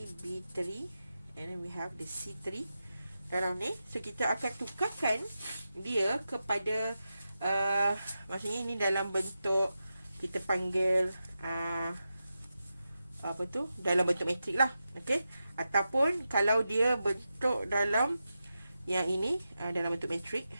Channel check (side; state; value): both; inverted; correlation -0.90